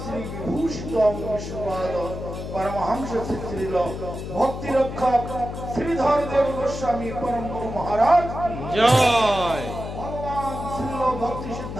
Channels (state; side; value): noise; left; hum, 7 dB below the sound